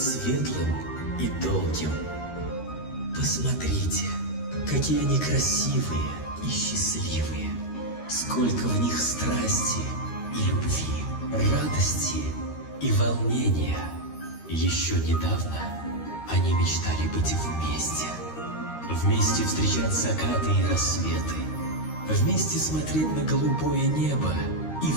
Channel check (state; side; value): late; right; 13 ms